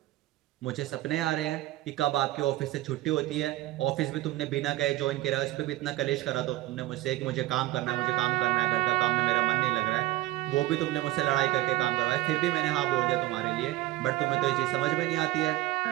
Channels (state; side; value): quieter; left; 17.2 dB